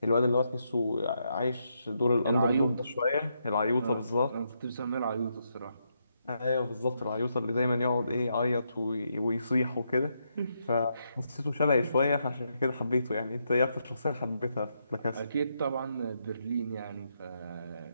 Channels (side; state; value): both; inverted; correlation -0.80